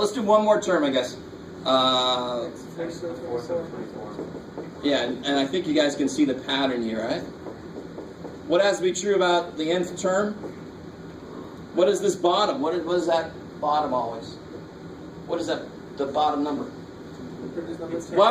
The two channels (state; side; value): identical; both; correlation 1.00